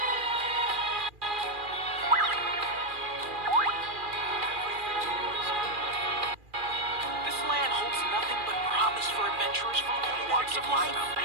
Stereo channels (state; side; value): late; left; 2.4 ms